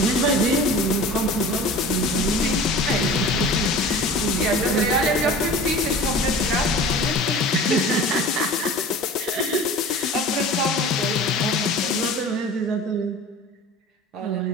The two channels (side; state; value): both; normal; correlation 0.39